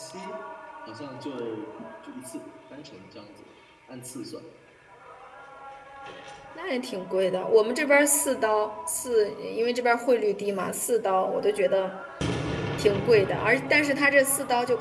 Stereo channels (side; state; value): both; identical; correlation 1.00